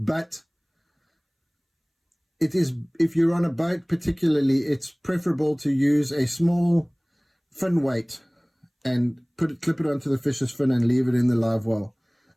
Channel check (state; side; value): identical; both; correlation 1.00